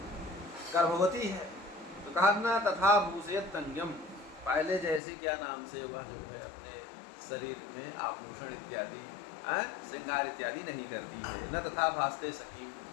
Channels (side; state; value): right; drops out; at 5.0 s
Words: गर्भवती है, तो कहा ना तथा भूषयत्यंगम, पहले जैसे क्या नाम से वह जो है अपने शरीर में आभूषण इत्यादि श्रृंगार इत्यादि नहीं करती है। न तथा भासते सखी,